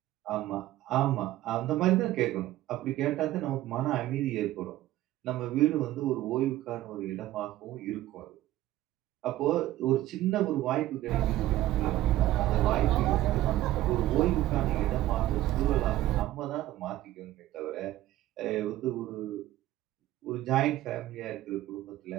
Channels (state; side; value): quieter; left; 14.9 dB